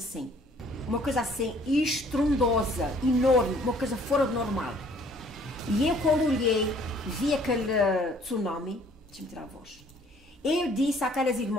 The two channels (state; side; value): normal; both; correlation 0.58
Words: uma coisa assim estrondosa, enorme, uma coisa fora do normal. E eu, quando olhei, vi aquele tsunami, deixa-me tirar a voz, eu disse àquelas